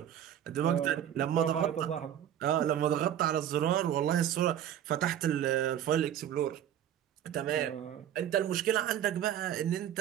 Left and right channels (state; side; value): quieter; left; 10.5 dB